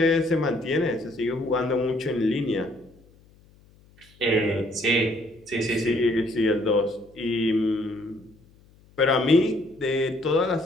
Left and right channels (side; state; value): left; noise; hum, 29 dB below the sound